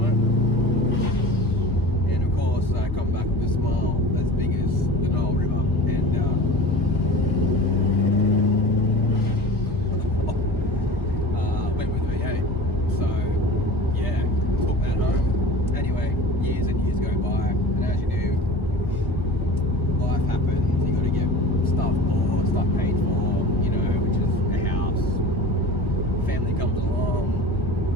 it. And of course, I come back with a smile as big as the Nile River. And went with the V8. So, yeah, took that home. Anyway, years and years go by. And as you do, life happens. You got to get stuff bought, stuff paid for, you know, which is a house. Family comes along,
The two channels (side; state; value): both; normal; correlation 0.37